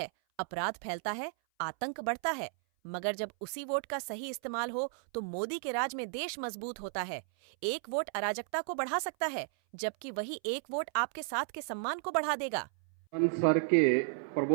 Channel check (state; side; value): silent; left; 55 dB below the other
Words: अपराध फैलता है, आतंक बढ़ता है, मगर जब उसी वोट का सही इस्तेमाल हो तो मोदी के राज में देश मजबूत होता है। एक वोट अराजकता को बढ़ा सकता है, जबकि वही एक वोट आपके साथ के सम्मान को बढ़ा देगा। सर के